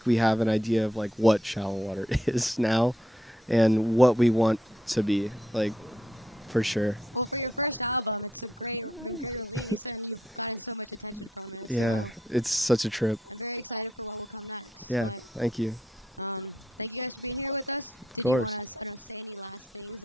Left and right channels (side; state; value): both; normal; correlation 0.75